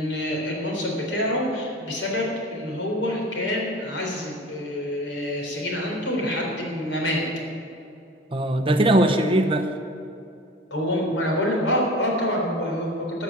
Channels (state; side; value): normal; both; correlation 0.39